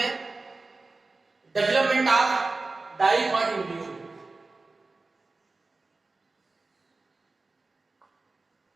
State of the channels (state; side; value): quieter; left; 3.5 dB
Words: डेवलपमेंट ऑफ डाइकॉट एम्ब्रियो।